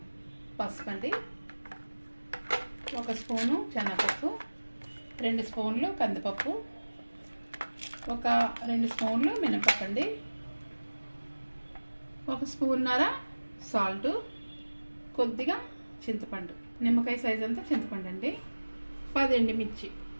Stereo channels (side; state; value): both; inverted; correlation -1.00